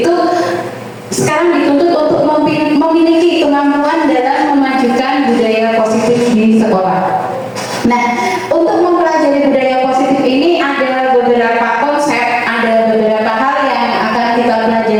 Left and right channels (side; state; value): both; identical; correlation 1.00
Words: sekarang dituntut untuk memiliki kemampuan dalam memajukan budaya positif di sekolah. Nah, untuk mempelajari budaya positif ini ada beberapa konsep, ada beberapa hal yang akan kita